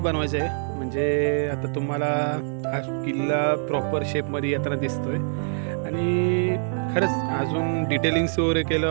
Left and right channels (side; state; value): left; silent; 62 dB below the other